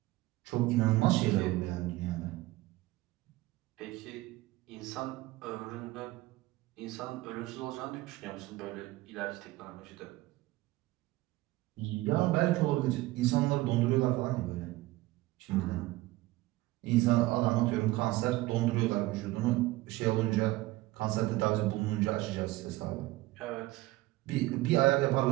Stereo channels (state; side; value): quieter; left; 18.8 dB